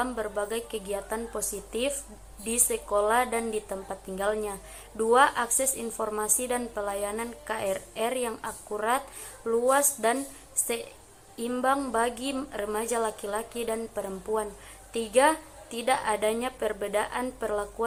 berbagai kegiatan positif di sekolah dan di tempat tinggalnya. 2, akses informasi dan pelayanan KRR yang akurat, luas, dan seimbang bagi remaja laki-laki dan perempuan. 3, tidak adanya perbedaan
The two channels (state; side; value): identical; both; correlation 1.00